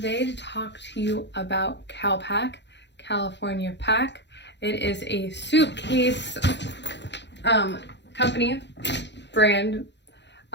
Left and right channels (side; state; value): right; late; 0.51 ms